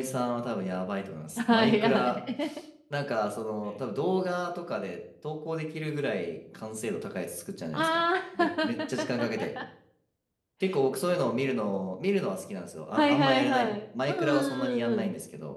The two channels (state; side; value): identical; both; correlation 1.00